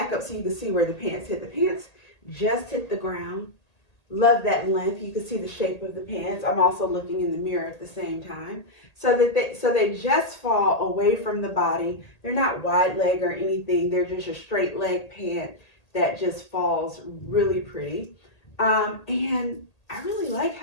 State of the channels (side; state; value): right; late; 1.8 ms